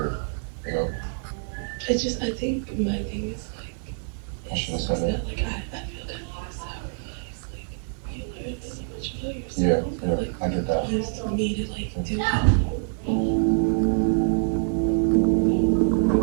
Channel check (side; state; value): left; silent; 61 dB below the other